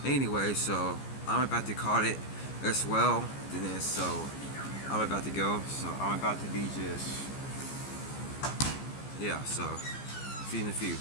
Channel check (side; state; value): right; late; 15 ms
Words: anyway, so I'm about to call it as well. Then so I'm about to go. So I'm about to be just, yeah. So see you in a few.